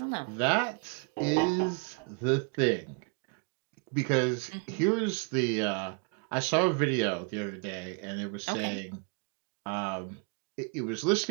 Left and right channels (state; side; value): quieter; left; 33.6 dB